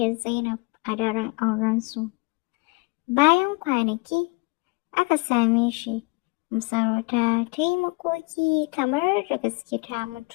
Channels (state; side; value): quieter; right; 27.7 dB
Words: Zainab a daren aurensu. Bayan kwanaki aka same shi, masarauta ta yi makoki kamar da gaske ta